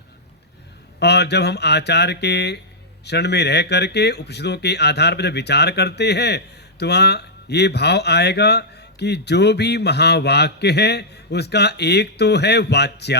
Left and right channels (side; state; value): both; normal; correlation -0.10